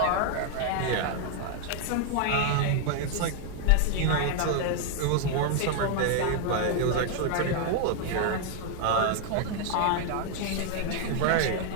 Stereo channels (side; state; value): both; different; correlation 0.00